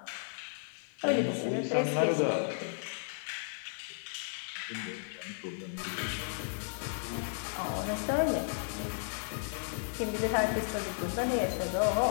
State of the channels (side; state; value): right; silent; 55 dB below the other